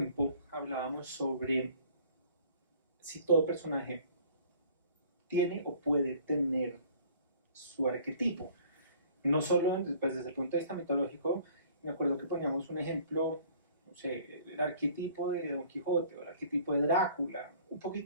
hablábamos sobre si todo personaje tiene o puede tener su arquetipo. No solo desde el punto de vista mitológico, me acuerdo que poníamos un ejemplo, no sé, el arquetipo de Don Quijote o el arquetipo de Drácula, un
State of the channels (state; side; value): inverted; both; correlation -0.53